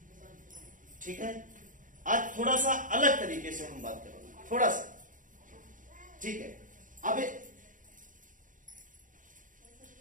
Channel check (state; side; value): late; left; 0.38 ms